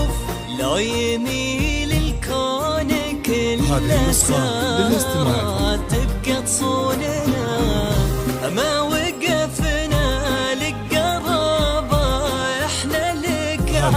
لو يميل الكون كله ساعة تبقى تصوننا. ما وقفنا لك قرابة احنا لك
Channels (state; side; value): identical; both; correlation 1.00